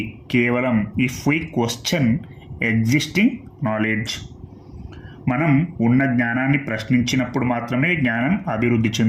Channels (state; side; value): identical; both; correlation 1.00